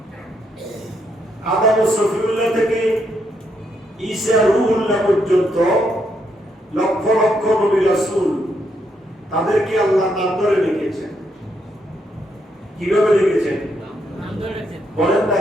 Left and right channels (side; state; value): both; normal; correlation 0.77